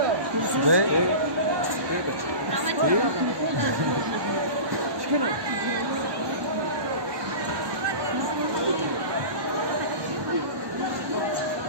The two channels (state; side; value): late; left; 1.2 ms